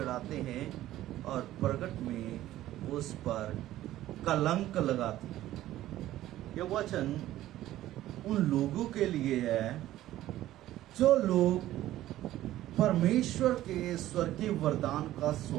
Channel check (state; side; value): quieter; left; 14.3 dB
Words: हैं और प्रगट में उस पर कलंक लगाती। यह वचन उन लोगों के लिए है जो लोग परमेश्वर के स्वर्गीय वरदान का